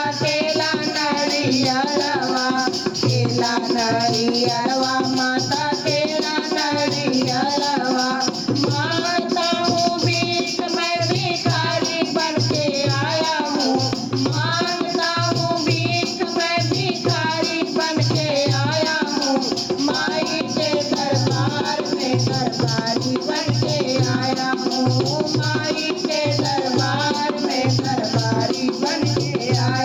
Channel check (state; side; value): identical; both; correlation 1.00